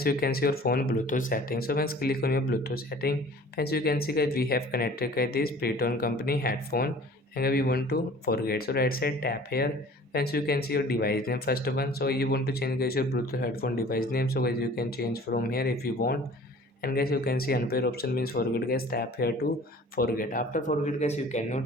you can see your phone Bluetooth setting. So once click on your Bluetooth setting friends, you can see guys we have connected guys this Preton company headphone and we want to forget. So right side tap here friends, you can see your device name first one. So you want to change guys your Bluetooth headphone device name. So guys you can change from here if you want. And guys you can see unpair option means forget guys, tap here to forget. After forget guys you cannot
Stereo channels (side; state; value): both; normal; correlation 0.47